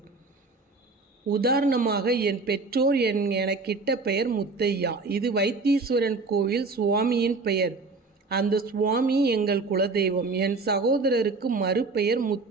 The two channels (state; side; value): quieter; left; 3.9 dB